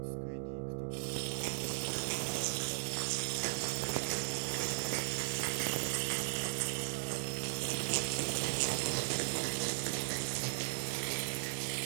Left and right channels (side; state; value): left; silent; 53 dB below the other